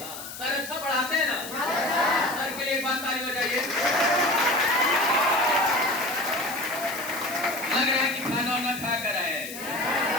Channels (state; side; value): noise; left; hiss, 11 dB below the sound